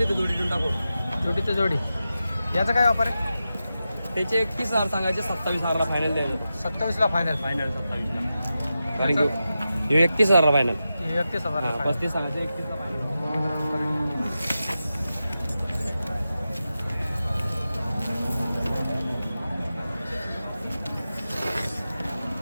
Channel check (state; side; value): inverted; both; correlation -0.91